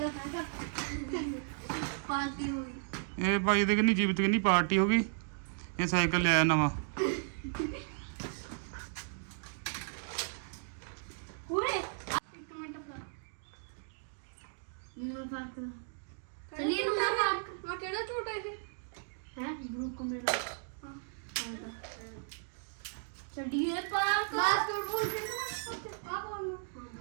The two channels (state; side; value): silent; left; digital silence